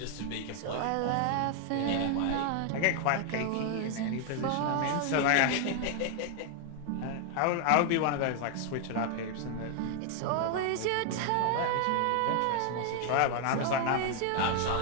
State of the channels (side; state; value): both; different; correlation 0.00